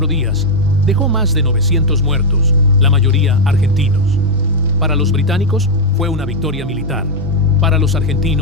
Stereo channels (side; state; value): both; normal; correlation 0.00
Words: días, dejó más de 900 muertos, la mayoría argentinos. Para los británicos fue una victoria militar. Para los